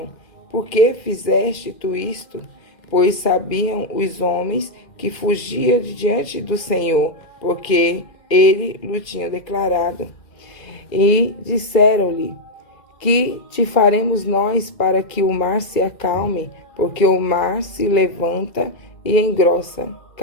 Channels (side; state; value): right; late; 2.1 ms